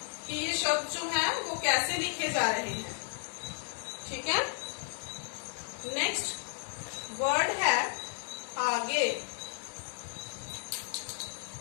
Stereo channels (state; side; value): silent; right; 55 dB below the other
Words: कि ये शब्द जो है वो कैसे लिखे जा रहे हैं। ठीक है। नेक्स्ट वर्ड है आगे।